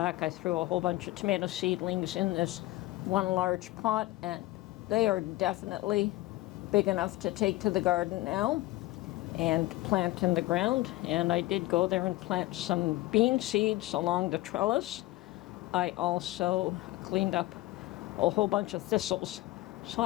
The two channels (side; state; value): right; quieter; 18.1 dB